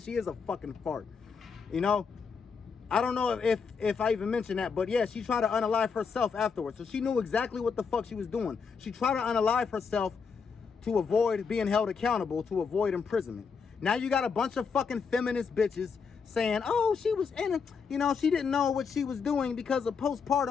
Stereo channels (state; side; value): quieter; right; 5.7 dB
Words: is a fucking fart. You know, I don't know if I even mentioned that. But yeah, she tried to unalive herself afterwards. So she knew exactly what the fuck she was doing. She tried to unalive herself to avoid being held accountable, to avoid imprisonment. Now you got a bunch of fucking feminist bitches saying, oh, she was in it. You know, she didn't know what she was doing because of